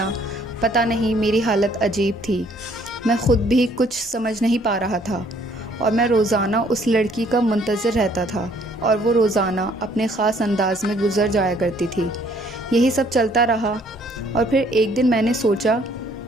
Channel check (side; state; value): both; normal; correlation 0.62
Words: پتہ نہیں، میری حالت عجیب تھی۔ میں خود بھی کچھ سمجھ نہیں پا رہا تھا، اور میں روزانہ اس لڑکی کا منتظر رہتا تھا، اور وہ روزانہ اپنے خاص انداز میں گزر جایا کرتی تھی۔ یہی سب چلتا رہا، اور پھر ایک دن میں نے سوچا